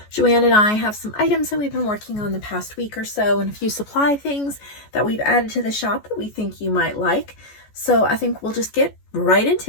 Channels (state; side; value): late; right; 14 ms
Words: JoAnn and I have some items that we've been working on the past week or so and a few supply things that we've added to the shop that we think you might like. So I think we'll just get right